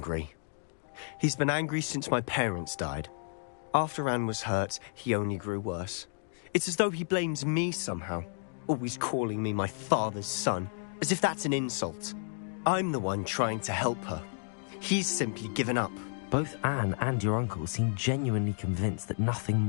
He's been angry since my parents died. After Anne was hurt, he only grew worse. It's as though he blames me somehow, always calling me my father's son, as if that's an insult. I'm the one trying to help her. He's simply given up. Both Anne and your uncle seem genuinely convinced that nothing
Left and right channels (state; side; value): silent; right; digital silence